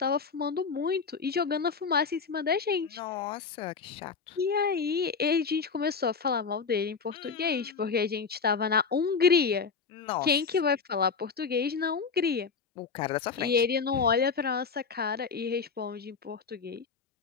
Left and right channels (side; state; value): right; quieter; 5.4 dB